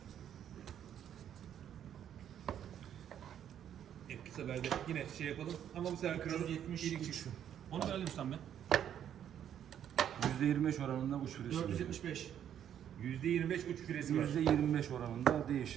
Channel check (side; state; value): left; quieter; 9.8 dB